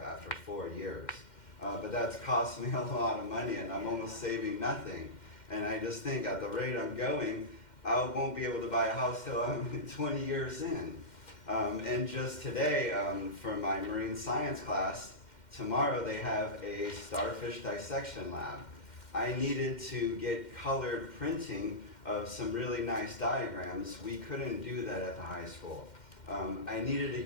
after 4 years. But that's cost me a lot of money, and I'm almost saving nothing. And I just think at the rate I'm going, I won't be able to buy a house till I'm 20 years in. And just today, for my marine science class, tomorrow they have a starfish dissection lab. I needed to get colored printing of some really nice diagrams. We couldn't do that at the high school. I needed to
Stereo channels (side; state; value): right; late; 2.1 ms